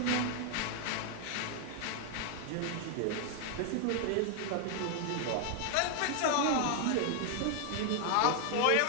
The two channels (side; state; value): both; different; correlation 0.00